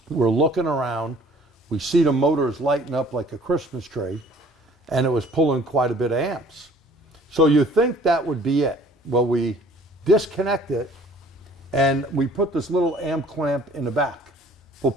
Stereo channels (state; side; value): normal; both; correlation 0.54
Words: We're looking around, we see the motors lighting up like a Christmas tree, and it was pulling quite a bit of amps. So you think that would be it. Well, we disconnect it, and we put this little amp clamp in the back. We're